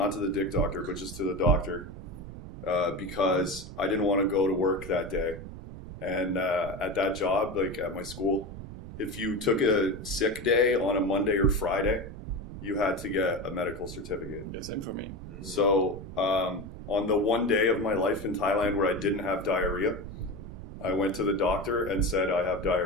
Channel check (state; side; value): noise; right; rumble, 11 dB below the sound